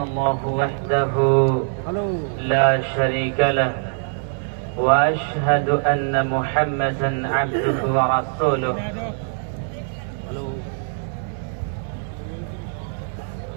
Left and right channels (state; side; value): silent; left; digital silence